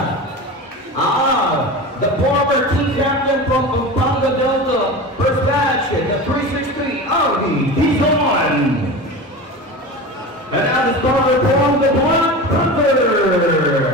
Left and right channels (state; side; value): normal; both; correlation 0.29